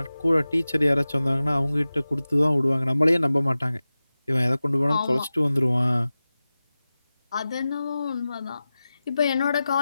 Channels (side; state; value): both; inverted; correlation -0.96